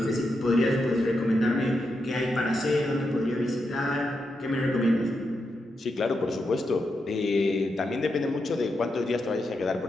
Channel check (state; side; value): normal; both; correlation 0.85